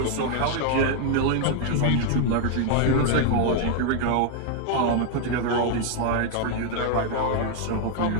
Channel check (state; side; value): different; both; correlation 0.00